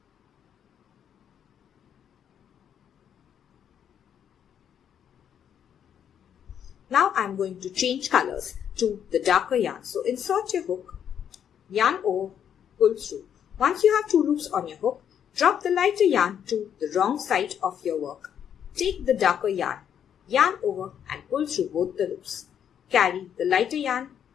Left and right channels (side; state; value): right; quieter; 8.9 dB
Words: Now I am going to change colors to the darker yarn. So insert your hook, yarn over, pull through. Once you have 2 loops on your hook, drop the lighter yarn to the wrong side of your work. Take the darker yarn, yarn over and pull through both the loops. Carry the lighter yarn